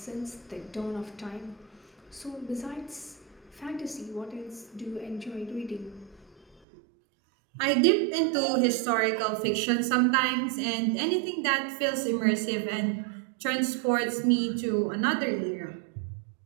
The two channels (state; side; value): drops out; left; at 6.6 s